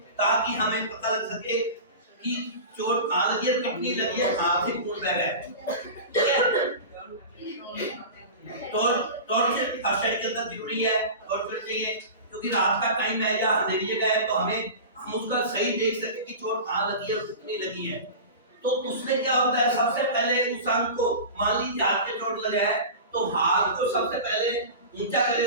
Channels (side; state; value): both; inverted; correlation -0.31